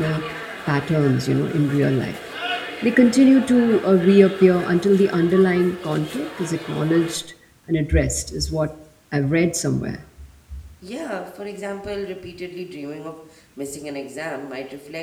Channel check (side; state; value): both; identical; correlation 1.00